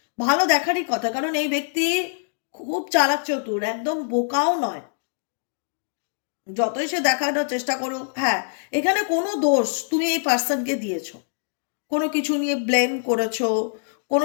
ভালো দেখারই কথা, কারণ এই ব্যক্তি খুব চালাক চতুর, একদম বোকাও নয়। যতই সে দেখানোর চেষ্টা করুক, হ্যাঁ এখানে কোনো দোষ তুমি এই পার্সনকে দিয়েছো, কোনো কিছু নিয়ে ব্লেম করেছো,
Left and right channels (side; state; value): right; silent; digital silence